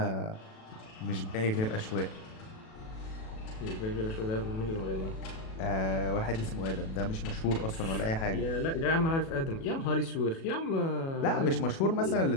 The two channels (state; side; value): late; right; 37 ms